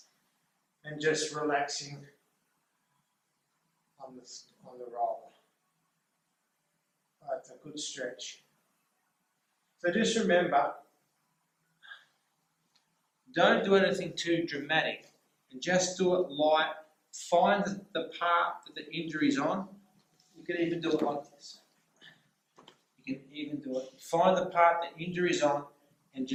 And just relaxing on the roller. That's a good stretch. So just remember, don't do anything too dramatic and just do it light. Find the part that the injury is on. You can even do it like this. You can even do it. Find the part the injury is on and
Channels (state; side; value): identical; both; correlation 1.00